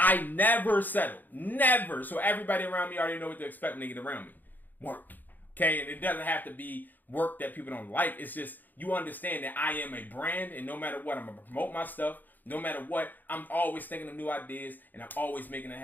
never settle. Never. So everybody around me already know what to expect when they get around me. Work. Okay? And it doesn't have to be work that people don't like. It's just you understand that I am a brand, and no matter what, I'm going to promote my stuff. No matter what, I'm always thinking of new ideas, and I'm always making it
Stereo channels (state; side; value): late; right; 0.086 ms